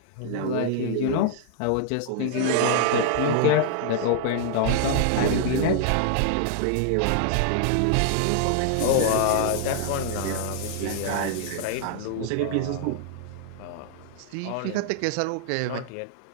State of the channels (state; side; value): different; both; correlation 0.00